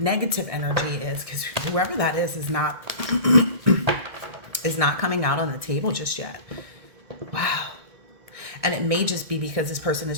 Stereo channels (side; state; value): left; late; 1.6 ms